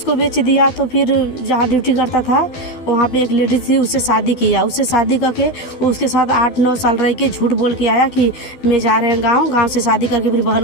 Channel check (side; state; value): right; late; 12 ms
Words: बेच दिया तो फिर जहाँ ड्यूटी करता था वहाँ पे एक लेडीज थी, उससे शादी किया। उससे शादी करके वो उसके साथ 8-9 साल रह के झूठ बोल के आया कि मैं जा रहे हैं गाँव से शादी करके फिर